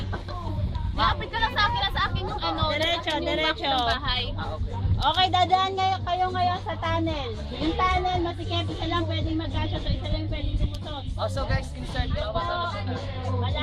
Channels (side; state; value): both; identical; correlation 1.00